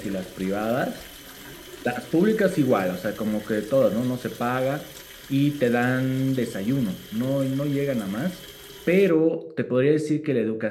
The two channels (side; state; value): both; identical; correlation 1.00